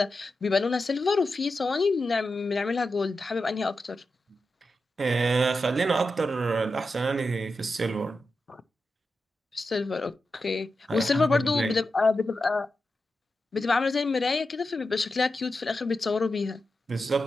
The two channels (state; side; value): normal; both; correlation 0.89